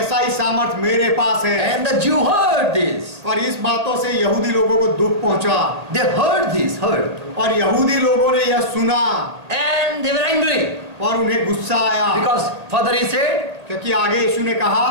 ही सामर्थ मेरे पास है। And the Jew heard this. और इस बातों से यहूदी लोगों को दुख पहुंचा। They heard this, और यहूदी लोगों ने यह सुना and they were angry और उन्हें गुस्सा आया, because further he said, क्योंकि आगे यीशु ने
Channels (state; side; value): late; left; 1.9 ms